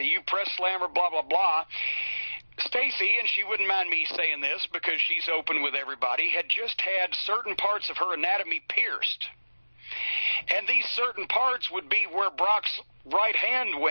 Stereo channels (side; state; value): both; inverted; correlation -1.00